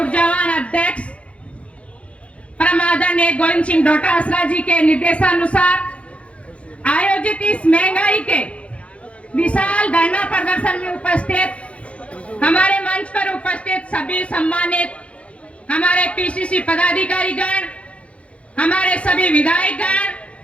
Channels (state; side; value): late; right; 0.062 ms